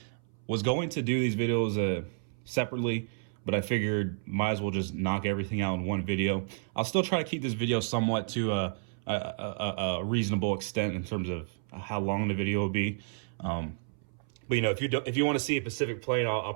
Was going to do these videos separately, but I figured might as well just knock everything out in one video. I'll still try to keep this video somewhat to a reasonable extent in terms of how long the video will be. But you know, if you want to see a specific plane, I'll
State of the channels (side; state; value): left; silent; 57 dB below the other